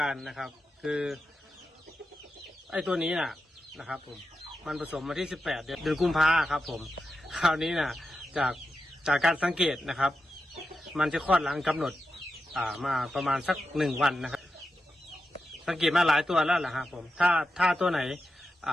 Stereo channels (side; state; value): both; normal; correlation 0.89